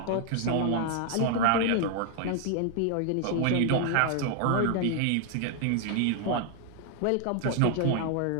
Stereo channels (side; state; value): both; different; correlation 0.00